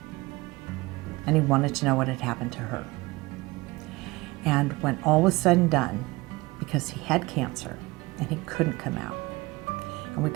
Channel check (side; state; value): left; quieter; 22.0 dB